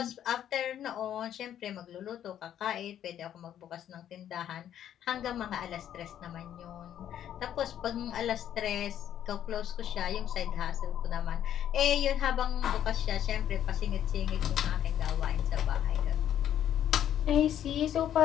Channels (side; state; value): right; quieter; 10.5 dB